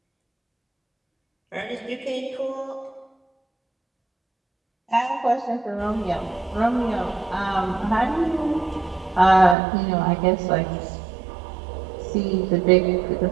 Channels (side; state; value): left; drops out; at 9.6 s